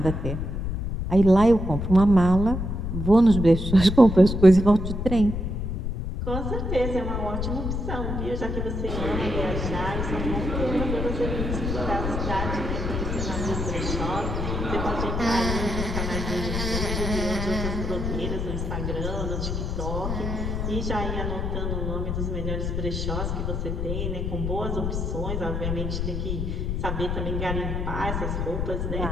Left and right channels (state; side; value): noise; left; rumble, 2 dB below the sound